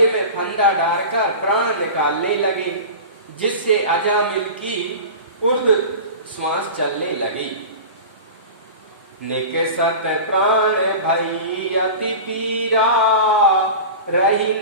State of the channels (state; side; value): inverted; both; correlation -0.32